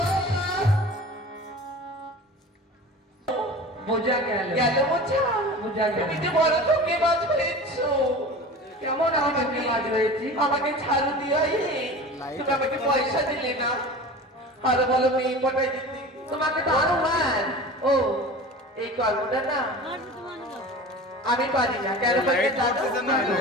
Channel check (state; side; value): normal; both; correlation 0.36